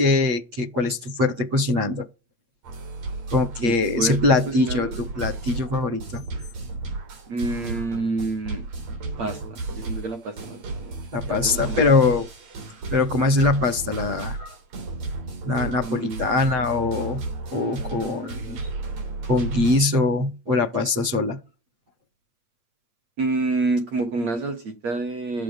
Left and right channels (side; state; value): left; late; 8.6 ms